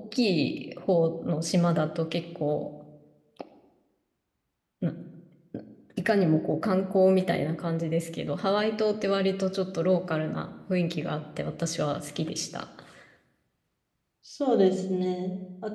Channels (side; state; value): both; identical; correlation 1.00